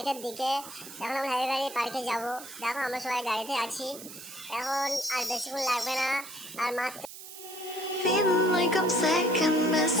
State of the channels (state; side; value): noise; right; hiss, 14 dB below the sound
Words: দিকে। এখন আমরা হ্যাপি ভ্যালি পার্কে যাব। দেখো আমরা সবাই গাড়িতে আছি এখন, আর বেশিক্ষণ লাগবে না। আর মাত্র Feeling like I'm second best,